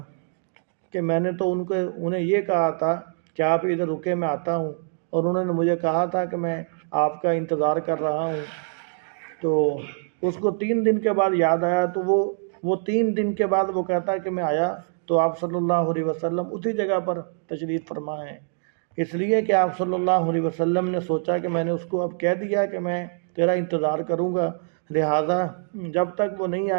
کہ میں نے تو انہیں یہ کہا تھا کہ آپ ادھر رکے، میں آتا ہوں، اور انہوں نے مجھے کہا تھا کہ میں آپ کا انتظار کر رہا ہوں۔ تو اس کو 3 دن کے بعد یاد آیا، تو وہ 3 دن کے بعد وہ کہتا ہے کہ میں آیا تو آپ صلی اللہ علیہ وسلم اسی جگہ پر تشریف فرما ہیں، اس لیے کہ آپ صلی اللہ علیہ وسلم نے سوچا کہ میں نے اس کو اب کہہ دیا کہ میں تیرا انتظار کروں گا، لہٰذا جب تک وہ نہیں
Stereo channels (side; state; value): left; silent; digital silence